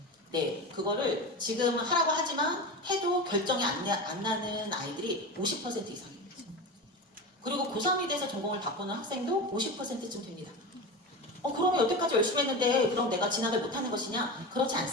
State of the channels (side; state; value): both; normal; correlation 0.25